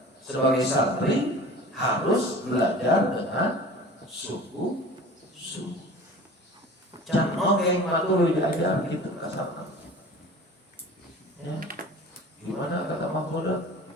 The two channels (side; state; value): both; normal; correlation 0.41